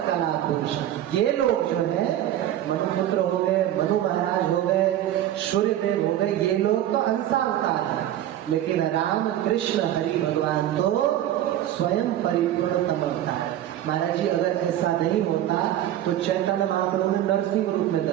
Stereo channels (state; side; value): quieter; left; 12.3 dB